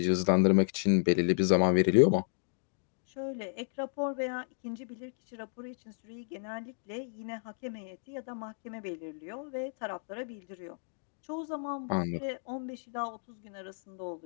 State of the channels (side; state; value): right; silent; digital silence